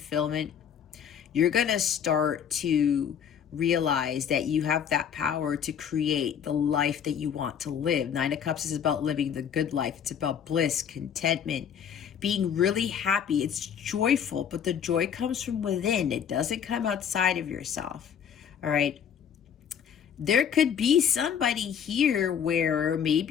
you're going to start to realize that you have that power to create the life that you want to live. Nine of Cups is about living the good life. It's about bliss, contentment, being really happy. It's joyful, but the joy comes from within. It doesn't come outside of yourself. All right. There could be somebody here where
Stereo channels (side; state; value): right; quieter; 8.2 dB